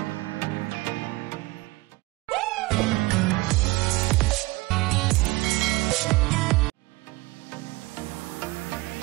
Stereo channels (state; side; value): quieter; left; 21.8 dB